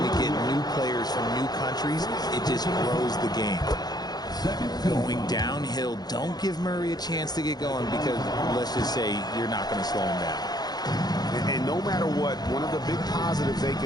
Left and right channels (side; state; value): right; late; 0.19 ms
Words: we get new players from new countries. It just grows the game. Going downhill, don't give Murray a chance to get going because, let's just say, you're not going to slow him down. And no matter what, one of the big positives they